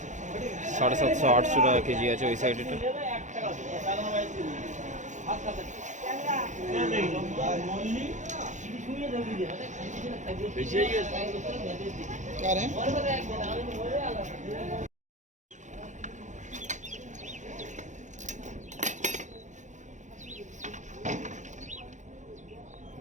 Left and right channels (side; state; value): left; late; 0.35 ms